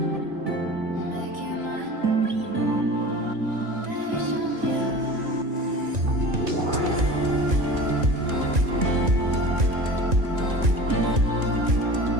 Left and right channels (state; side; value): late; left; 1.9 ms